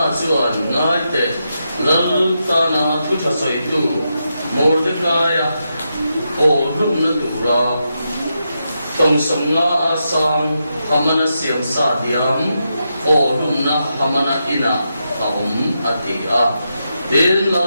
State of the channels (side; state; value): both; inverted; correlation -0.85